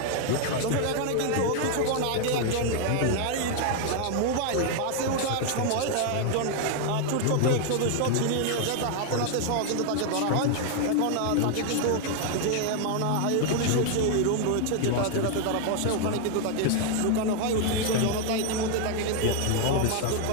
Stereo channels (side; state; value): both; different; correlation 0.00